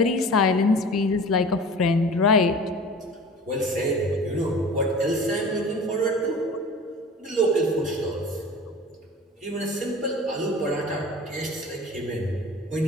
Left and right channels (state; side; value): normal; both; correlation 0.40